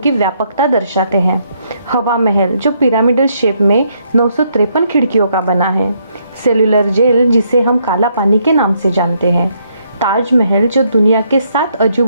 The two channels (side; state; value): both; inverted; correlation -0.73